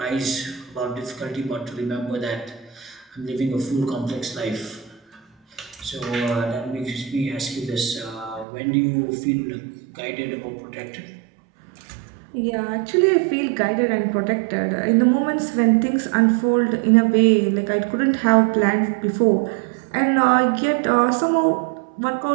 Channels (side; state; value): left; drops out; at 8.5 s